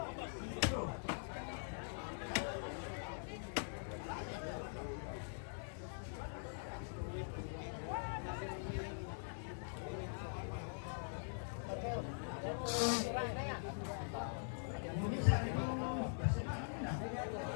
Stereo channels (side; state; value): right; silent; digital silence